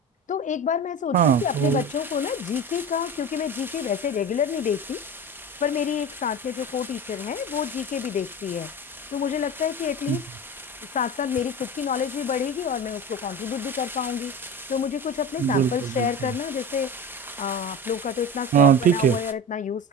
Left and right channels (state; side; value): normal; both; correlation 0.29